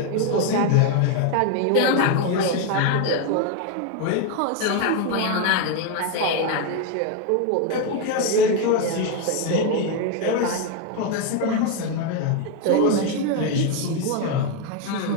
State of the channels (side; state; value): both; different; correlation 0.01